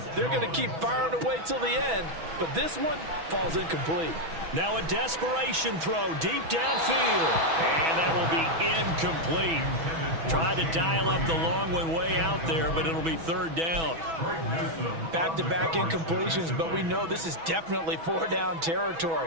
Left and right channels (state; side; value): late; left; 6.1 ms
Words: They're going to keep firing away till the end, but this one falls incomplete. Now a desperation throw deep downfield. And that will be incomplete. Tried to dial up the long one way out there, but it'll be 3rd down. Back-to-back incompletions, but we know this is definitely 4-down